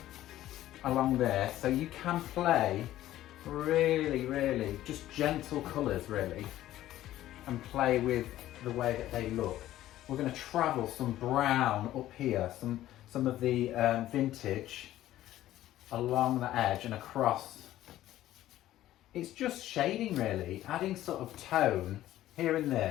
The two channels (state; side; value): quieter; right; 14.0 dB